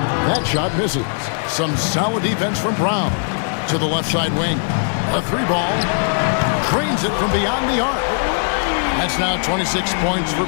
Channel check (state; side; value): silent; right; 55 dB below the other